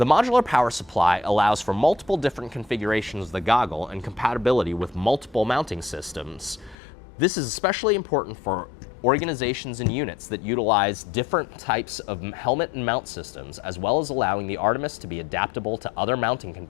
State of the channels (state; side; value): drops out; right; at 6.8 s